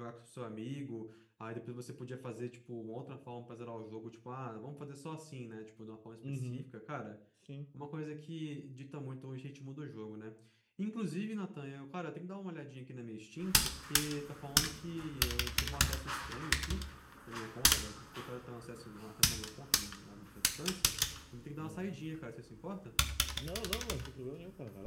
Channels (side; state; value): both; identical; correlation 1.00